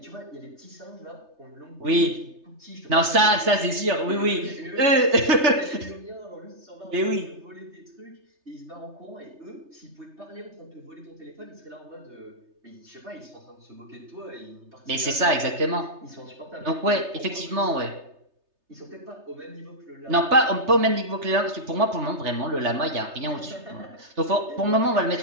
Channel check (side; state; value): left; late; 3.3 ms